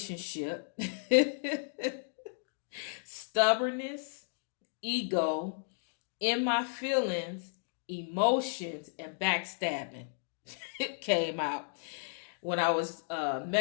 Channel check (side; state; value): right; silent; digital silence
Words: stubbornness, ego, in my feelings, emotions, and backstabbing it came out. When I was